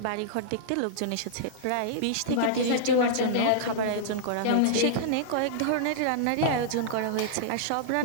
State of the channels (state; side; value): different; both; correlation -0.02